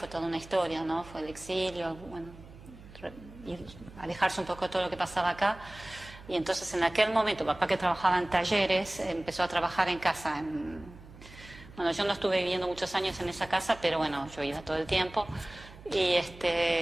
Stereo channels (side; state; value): right; noise; hum, 19 dB below the sound